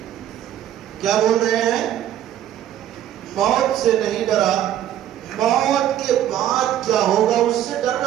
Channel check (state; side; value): quieter; left; 11.4 dB